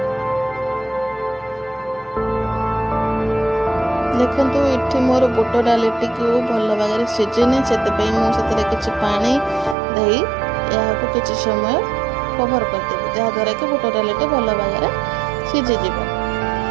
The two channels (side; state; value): left; drops out; at 9.8 s